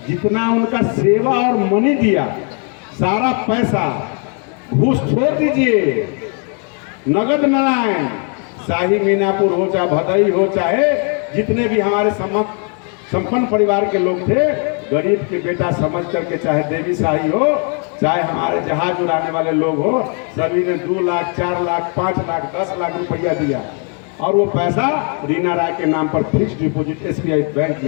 जितना उनका सेवा और मनी दिया, सारा पैसा घूस छोड़ दीजिए, नगद नारायण, शाही मीनापुर हो चाहे भदई हो, चाहे जितने भी हमारे संपन्न परिवार के लोग थे, गरीब के बेटा समझ करके, चाहे देवी शाही हो, चाहे हमारे जहाज उड़ाने वाले लोग हो, सभी ने 2 लाख 4 लाख 5 लाख 10 लाख रुपया दिया और वो पैसा रीना राय के नाम पर फिक्स डिपॉजिट SBI बैंक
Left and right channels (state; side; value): quieter; right; 40.0 dB